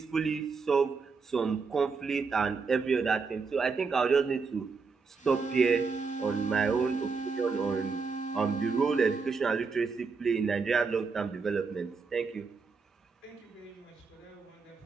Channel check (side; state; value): left; quieter; 4.8 dB